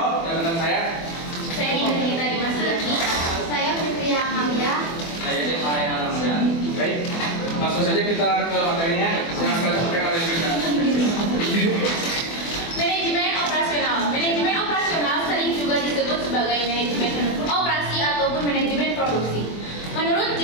dan rekan saya Nida Dimas Yati. Saya Fitria Amalia. Saya Devai Alamsyah. Baik, langsung saja kita ke materinya. Saya akan sampaikan oleh kita. Manajemen operasional. Manajemen operasional sering juga disebut sebagai manajemen operasi ataupun manajemen produksi. Menurut J.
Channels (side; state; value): right; late; 24 ms